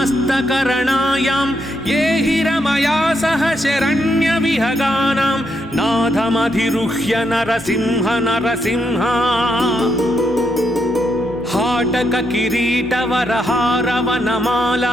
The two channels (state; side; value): normal; both; correlation 0.79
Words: ये हिरमया सह शरण्य विहगानां नाथमधिरुह्य नरसिंह नरसिंह हाटक